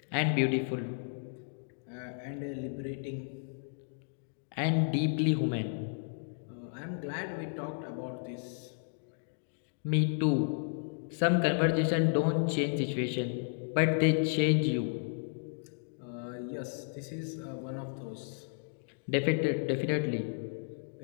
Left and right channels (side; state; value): right; silent; digital silence